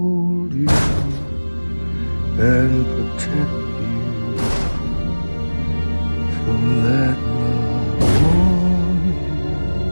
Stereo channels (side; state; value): both; inverted; correlation -1.00